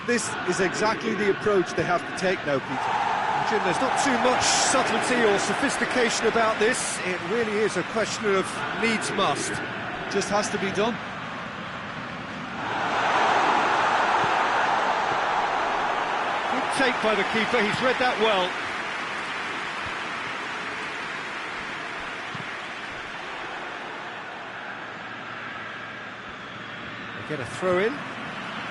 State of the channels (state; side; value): identical; both; correlation 1.00